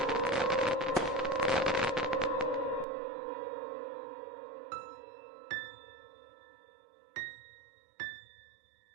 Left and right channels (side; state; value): left; drops out; at 2.9 s